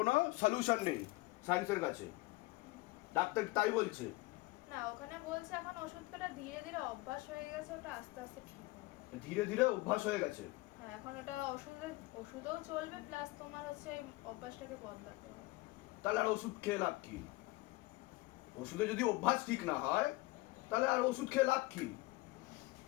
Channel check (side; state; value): right; quieter; 21.1 dB